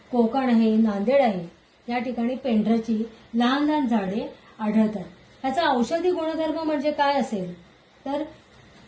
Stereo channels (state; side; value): identical; both; correlation 1.00